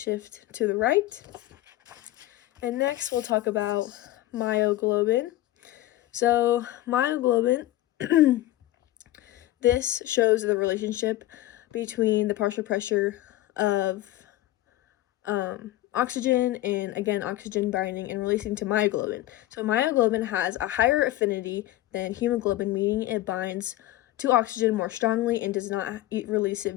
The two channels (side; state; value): right; quieter; 15.6 dB